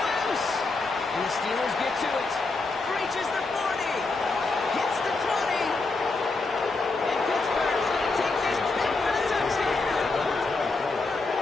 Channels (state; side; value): quieter; right; 3.6 dB